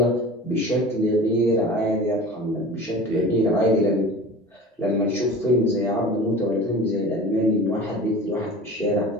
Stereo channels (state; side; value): normal; both; correlation 0.37